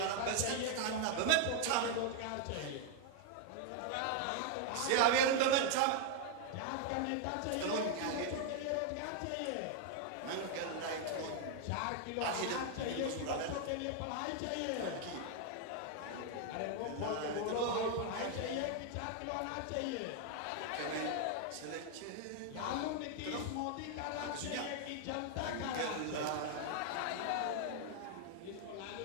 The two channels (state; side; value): different; both; correlation 0.00